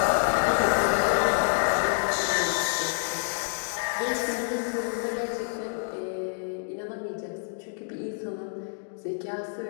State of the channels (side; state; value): right; silent; digital silence